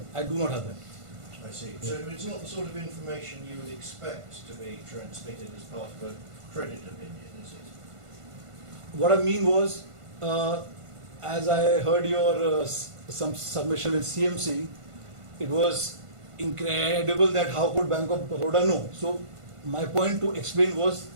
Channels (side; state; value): left; late; 1.5 ms